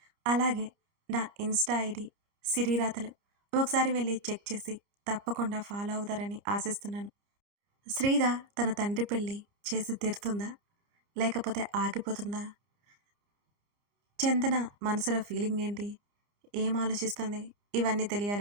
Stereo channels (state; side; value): late; left; 30 ms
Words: అలాగే నా ఇన్‌స్టా ఐడీ సిరిరాతలు. ఒకసారి వెళ్లి చెక్ చేసి తప్పకుండా ఫాలో అవుతారని ఆశిస్తున్నాను. శ్రీధ తన తండ్రి పెళ్లి చేసి తీరుతుందా? లేకపోతే ఆగిపోతుందా? చందన మనసులో ఫీలింగ్ ఏంటి? ఏం ఆలోచిస్తుంది? ఇవన్నీ